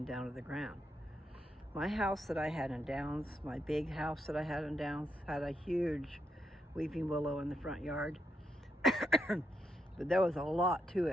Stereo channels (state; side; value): normal; both; correlation 0.80